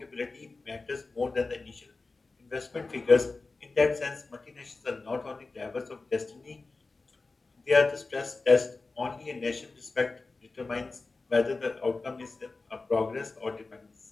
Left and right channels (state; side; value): quieter; right; 3.7 dB